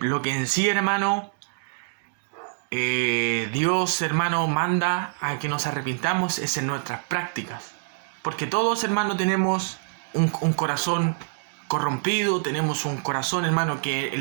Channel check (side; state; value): left; silent; digital silence